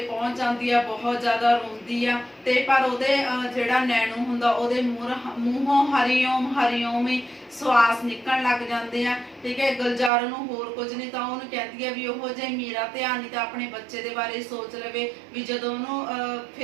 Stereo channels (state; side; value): drops out; left; at 10.1 s